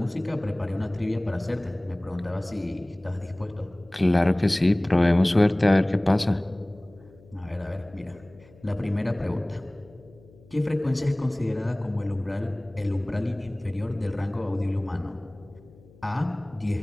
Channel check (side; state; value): left; noise; hum, 25 dB below the sound